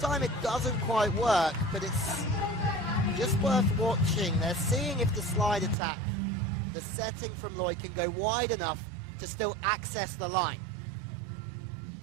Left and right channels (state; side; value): drops out; left; at 5.8 s